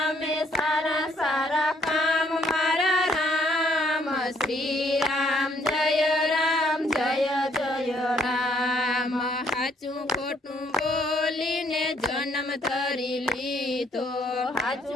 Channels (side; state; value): both; normal; correlation 0.67